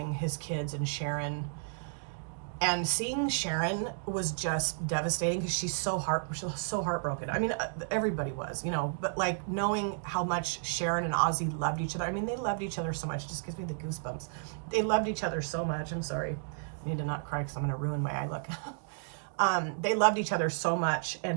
his kids and Sharon. And seeing Sharon was just devastating because she was so heartbroken. I mean, everybody was, you know, but like knowing how much Sharon and Ozzy loved each other. I mean, they loved each other so much. It just gives me the goosebumps. They loved each other so much. I'm sorry. I need to not cry because I'm going to ruin my eye look. They loved each other so much,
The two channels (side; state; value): left; silent; digital silence